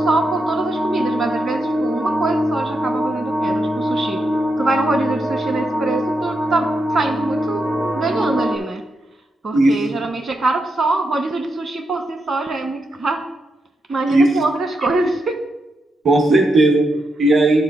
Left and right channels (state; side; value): normal; both; correlation 0.84